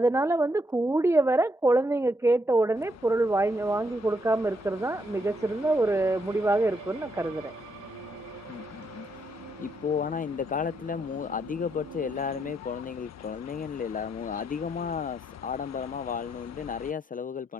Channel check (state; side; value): normal; both; correlation 0.76